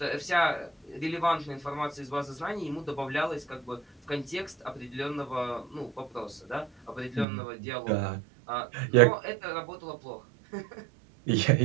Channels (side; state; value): left; drops out; at 7.2 s